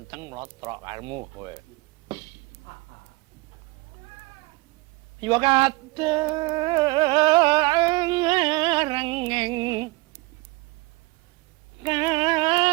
mlotrok karemu kowe. Yo rengeng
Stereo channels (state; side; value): quieter; left; 24.0 dB